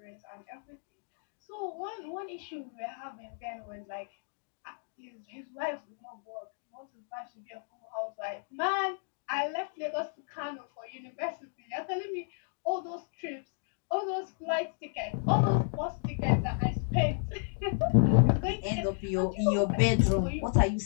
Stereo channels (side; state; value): right; silent; digital silence